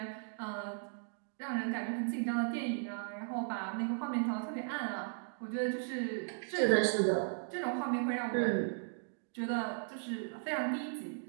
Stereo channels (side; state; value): left; silent; digital silence